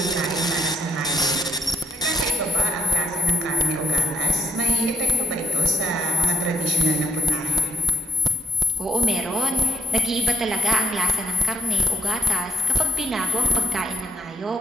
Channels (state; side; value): normal; both; correlation 0.79